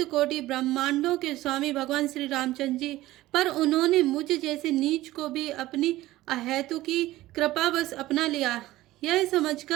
कोटि ब्रह्मांडों के स्वामी भगवान श्री रामचंद्र जी, पर उन्होंने मुझ जैसे नीच को भी अपनी अहेतु की कृपावश अपना लिया। यह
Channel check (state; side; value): quieter; left; 16.7 dB